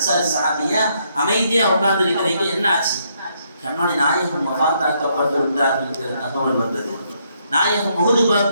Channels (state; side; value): inverted; both; correlation -0.73